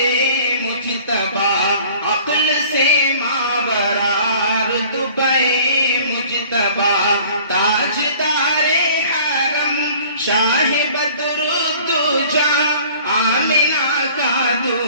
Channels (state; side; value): inverted; both; correlation -0.50